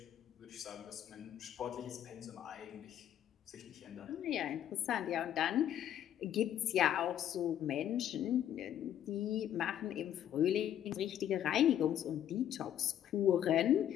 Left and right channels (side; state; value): right; quieter; 10.7 dB